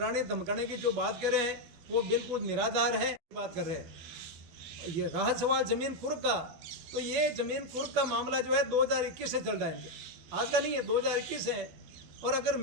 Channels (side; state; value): left; late; 12 ms